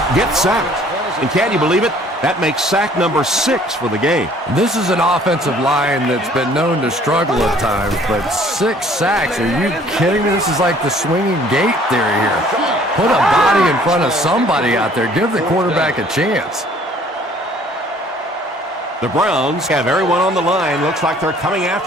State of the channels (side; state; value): both; normal; correlation 0.56